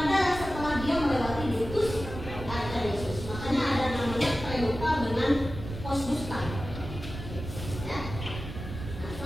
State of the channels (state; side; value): noise; right; rumble, 9 dB below the sound